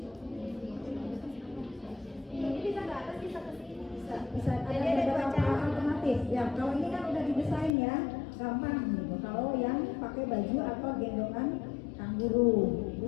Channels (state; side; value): drops out; right; at 7.8 s